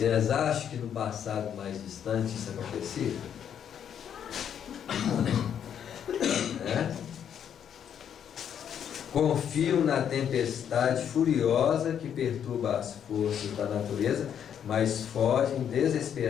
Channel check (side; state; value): right; quieter; 8.8 dB